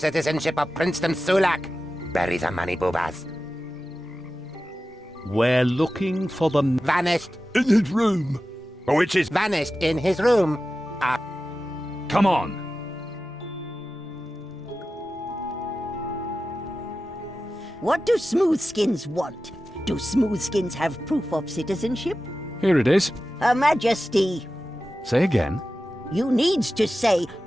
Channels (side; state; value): both; normal; correlation 0.94